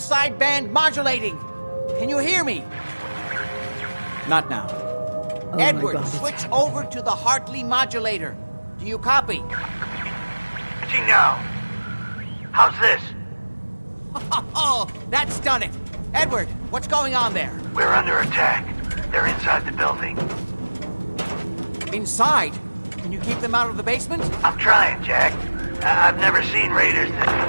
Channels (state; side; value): inverted; both; correlation -1.00